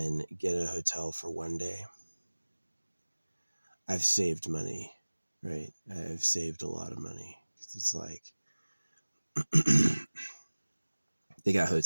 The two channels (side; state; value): both; inverted; correlation -1.00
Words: get a hotel for one day, I've saved money, right? I've saved a lot of money. It's like they got